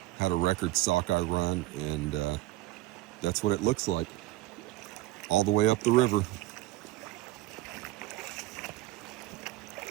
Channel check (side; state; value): left; quieter; 17.4 dB